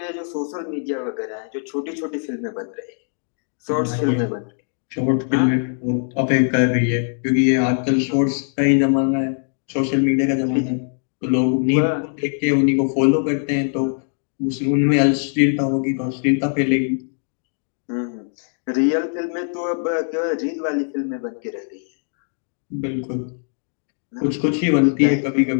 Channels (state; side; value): silent; right; 63 dB below the other